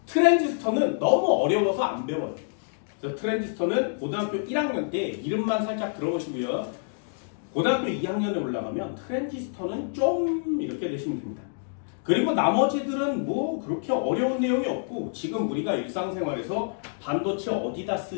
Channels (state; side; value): silent; right; digital silence